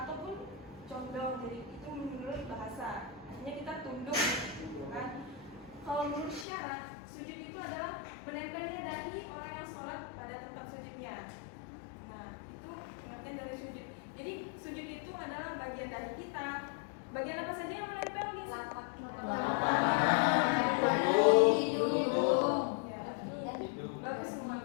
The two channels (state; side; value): drops out; right; at 6.5 s